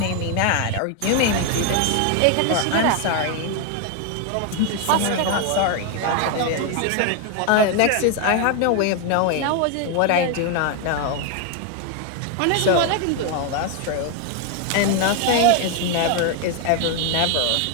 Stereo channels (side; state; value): both; different; correlation 0.01